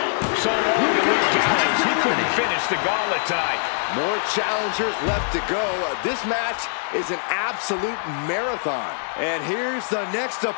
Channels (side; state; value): right; silent; digital silence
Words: So long to Luke Gallows. He couldn't finish the gauntlet tonight. More challengers left to go. This match is an absolute marathon. And here's the next